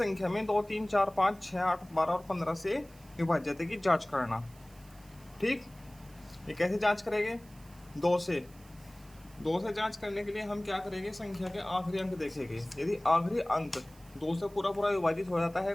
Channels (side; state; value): right; noise; hiss, 26 dB below the sound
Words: में 2, 3, 4, 5, 6, 8, 12 और 15 से विभाज्यता की जांच करना। ठीक, ये कैसे जांच करेंगे? 2 से जांच करने के लिए हम क्या करेंगे? संख्या के आखिरी अंक देखेंगे। यदि आखिरी अंक 2 से पूरा पूरा विभाजित हो जाता है,